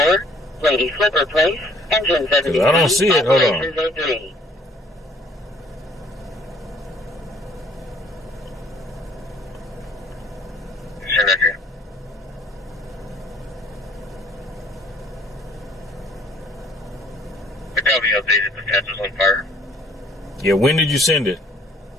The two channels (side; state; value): both; normal; correlation 0.59